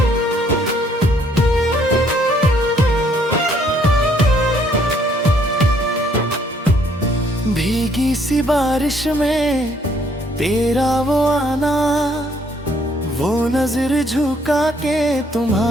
भीगी सी बारिश में तेरा वो आना, वो नजर झुका के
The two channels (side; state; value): both; normal; correlation 0.66